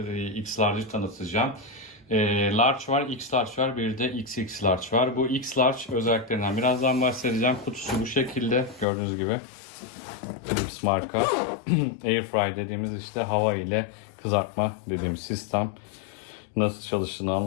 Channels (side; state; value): right; drops out; at 8.8 s